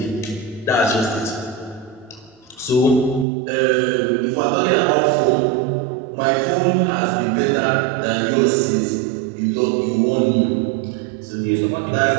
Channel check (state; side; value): drops out; left; at 3.2 s